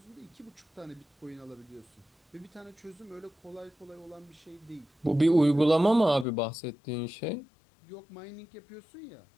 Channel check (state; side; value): drops out; right; at 6.2 s